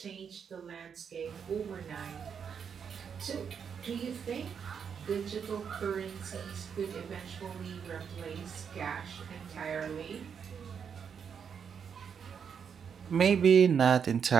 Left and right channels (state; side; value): quieter; left; 7.1 dB